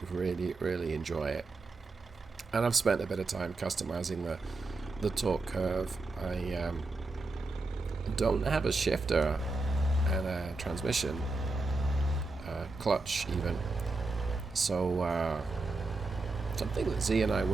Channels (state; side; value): quieter; left; 3.4 dB